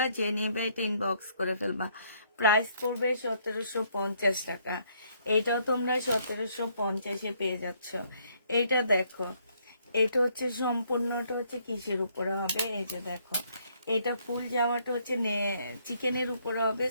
যে নেবে এটা ইনবক্স করে ফেলবা। প্রাইস পড়বে 1750 টাকা। এইটাও তোমরা 1750-এ পেয়ে যাচ্ছ। এইটা দেখো, এটা হচ্ছে সম্পূর্ণটা হচ্ছে কিসের উপরে হবে, এই যে দেখো, এটা ফুল জামাটা হচ্ছে চিকেনের উপরে হবে,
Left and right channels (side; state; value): both; inverted; correlation -0.68